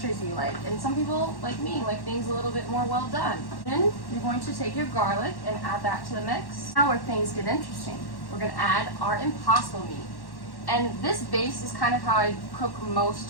you like. And some people, like me, like things a little bit more well done. Then you're going to take your garlic and add that to the mix. Now where things get interesting. We're gonna add our impossible meat. And this base is kind of how I cook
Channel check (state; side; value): late; right; 1.1 ms